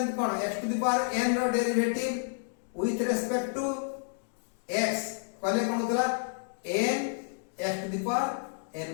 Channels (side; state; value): right; silent; digital silence